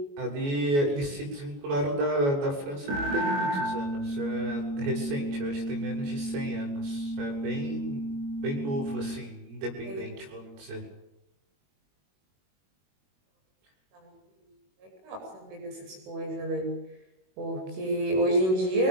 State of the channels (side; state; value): left; late; 21 ms